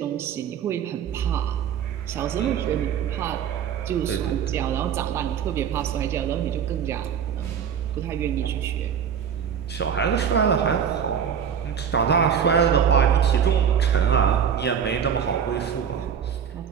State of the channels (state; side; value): quieter; left; 7.9 dB